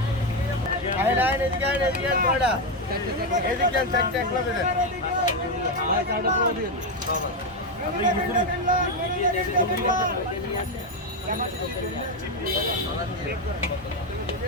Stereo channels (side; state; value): both; normal; correlation 0.07